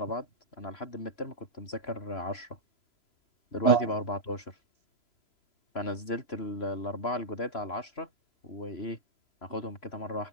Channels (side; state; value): right; late; 3.0 ms